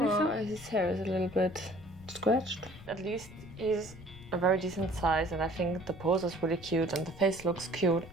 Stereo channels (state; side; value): noise; left; rumble, 18 dB below the sound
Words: so. His hair is a little bit scratched. At least he's a very decent size and I think the pose is really cute and the face looks cute.